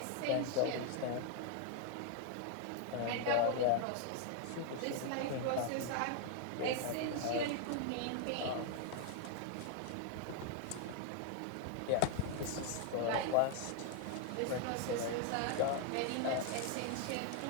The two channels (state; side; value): different; both; correlation 0.00